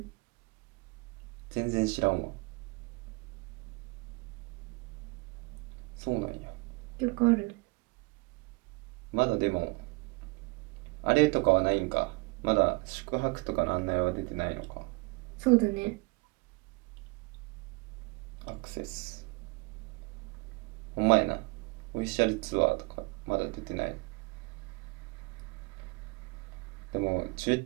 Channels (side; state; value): left; quieter; 28.6 dB